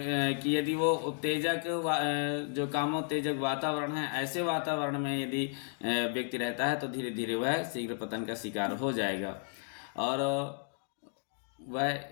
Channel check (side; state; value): right; silent; 56 dB below the other